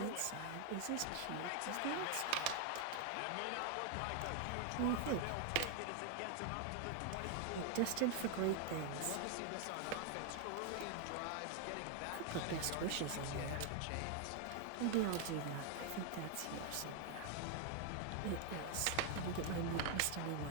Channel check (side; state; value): both; different; correlation 0.00